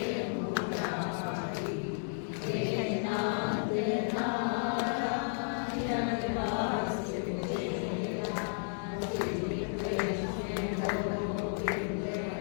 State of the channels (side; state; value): right; silent; digital silence